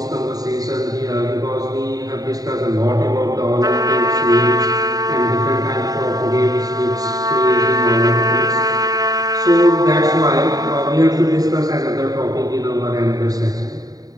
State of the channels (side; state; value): left; late; 0.18 ms